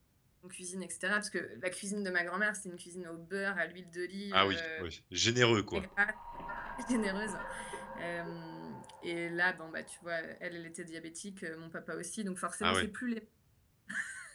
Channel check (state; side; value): identical; both; correlation 1.00